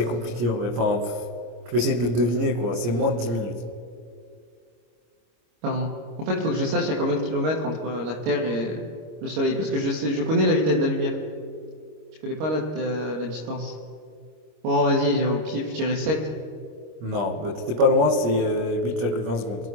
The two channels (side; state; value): left; late; 26 ms